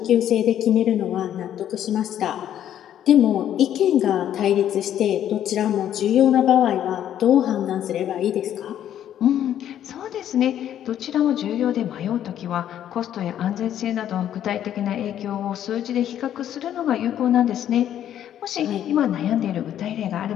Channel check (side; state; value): right; quieter; 10.7 dB